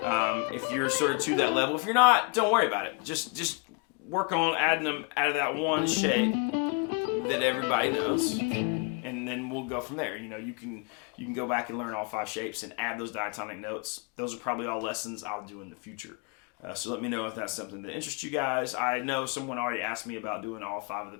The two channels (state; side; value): quieter; right; 34.8 dB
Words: If you're sort of to that level. If you're not, don't worry about it. Just work on adding them out of that one shape that everybody knows, and then we'll go from there. You know, you can go back and learn all 5 shapes and add those diatonic notes. Those are probably all lessons I'll do in the future. So let me know if that's something that interests you guys. I know someone already asked me about doing all 5 of the